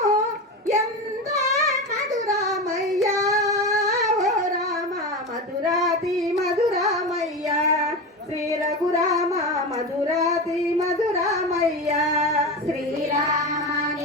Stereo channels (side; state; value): both; normal; correlation 0.23